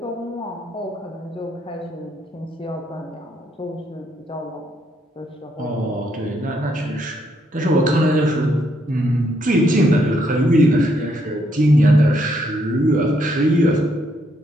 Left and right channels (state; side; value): normal; both; correlation 0.74